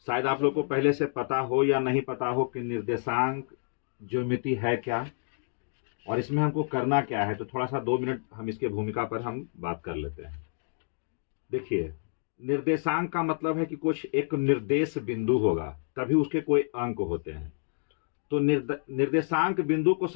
शायद आप लोग को पहले से पता हो या नहीं पता हो कि निर्देशांक ज्योमेट्री है क्या और इसमें हमको करना क्या है। तो थोड़ा सा 2 मिनट हम इसके भूमिका पर हम बात कर लेते हैं। देखिए, निर्देशांक का मतलब है कि कुछ एक निर्देश बिंदु होगा, तभी उसके कोई अंक होते हैं। तो निर्देशांक बिंदु को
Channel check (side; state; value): right; silent; digital silence